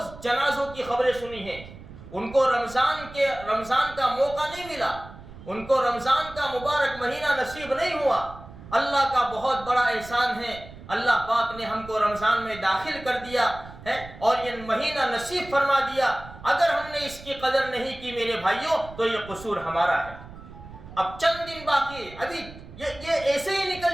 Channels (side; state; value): right; noise; rumble, 17 dB below the sound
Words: جنازوں کی خبریں سنی ہیں۔ ان کو رمضان کا موقع نہیں ملا، ان کو رمضان کا مبارک مہینہ نصیب نہیں ہوا۔ اللہ کا بہت بڑا احسان ہے، اللہ پاک نے ہم کو رمضان میں داخل کر دیا ہے اور یہ مہینہ نصیب فرما دیا۔ اگر ہم نے اس کی قدر نہیں کی میرے بھائیوں تو یہ قصور ہمارا ہے۔ اب چند دن باقی ہے، ابھی یہ ایسے ہی نکل